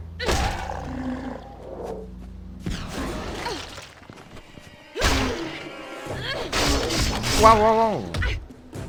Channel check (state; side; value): identical; both; correlation 1.00